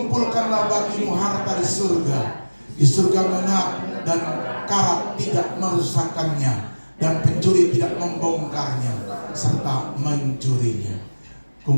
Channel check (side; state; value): both; inverted; correlation -1.00